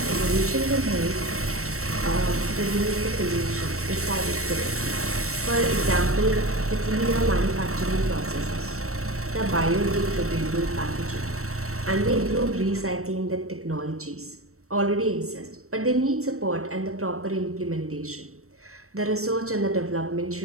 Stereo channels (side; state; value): left; late; 0.63 ms